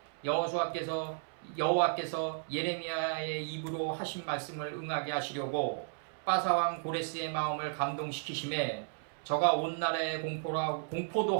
여호와께서 예레미야의 입으로 하신 말씀을 응하게 하시려고 바사왕 고레스의 마음을 감동시키심에 저가 온 나라에 공포도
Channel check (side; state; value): left; silent; 55 dB below the other